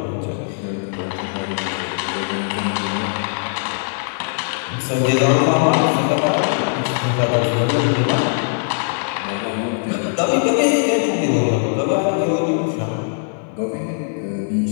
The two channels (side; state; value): right; silent; 60 dB below the other